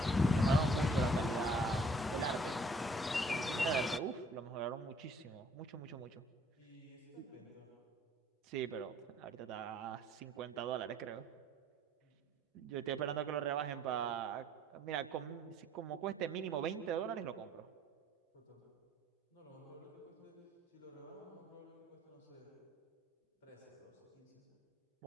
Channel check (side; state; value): both; normal; correlation 0.60